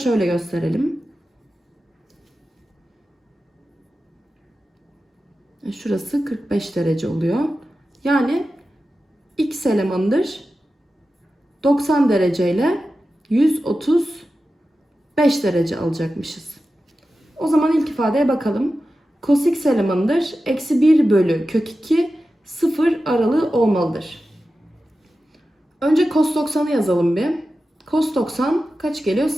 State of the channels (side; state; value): both; normal; correlation 0.93